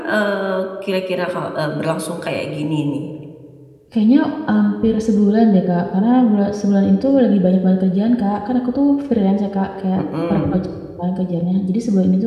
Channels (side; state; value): both; identical; correlation 1.00